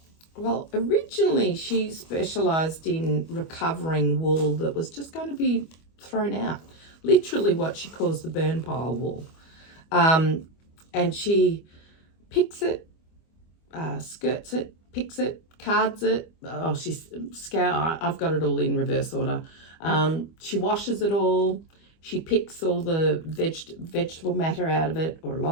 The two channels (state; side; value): late; right; 25 ms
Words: originally she specialized in recovering wool that was just going to be thrown out, literally what she calls the burn pile wool. And she picks it, skirts it, picks it, cards it. Oh, I've got it all in reverse order. She washes it all. She picks all the vegetable matter out of it, or a